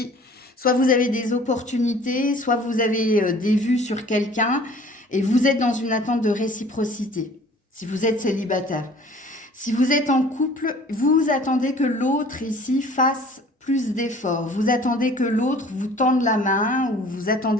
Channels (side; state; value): both; normal; correlation 0.50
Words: soit vous avez des opportunités, soit vous avez des vues sur quelqu'un et vous êtes dans une attente de réciprocité. Si vous êtes célibataire. Si vous êtes en couple, vous attendez que l'autre ici fasse plus d'efforts. Vous attendez que l'autre vous tende la main ou vous